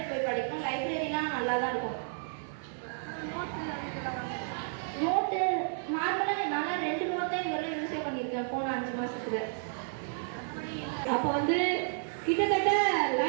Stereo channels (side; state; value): left; silent; digital silence